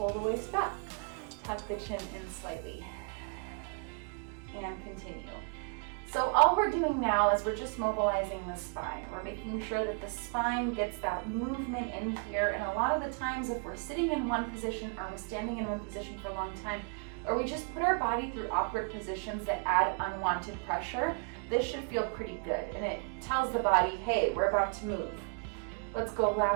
the waist back. Tuck the chin in slightly. And continue. So all we're doing now is we're just mobilizing the spine. We're making sure that the spine gets that movement in here. And a lot of the times if we're sitting in one position or we're standing in one position for a long time, or we just put our body through awkward positions that add unwanted pressure, this should feel pretty good. And it tells the body, hey, we're about to move. Let's go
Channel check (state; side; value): quieter; left; 38.7 dB